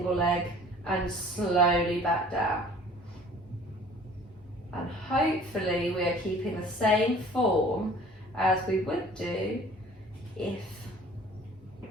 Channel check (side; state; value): both; normal; correlation 0.50